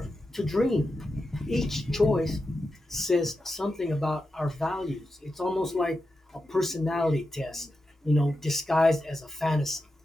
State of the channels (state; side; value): normal; both; correlation 0.89